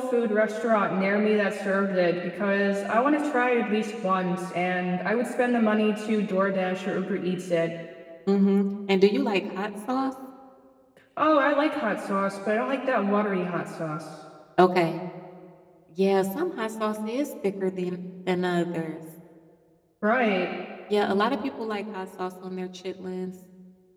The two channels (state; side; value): identical; both; correlation 1.00